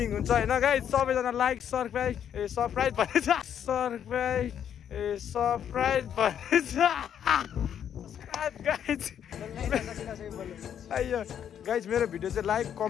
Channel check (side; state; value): right; quieter; 9.1 dB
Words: हुन्छ होइन गाइज सबैजना लाइक सब्सक्राइब भनेछ सब्सक्राइब भनेछ गाइज मेरो भिडियो चाहिँ लाइक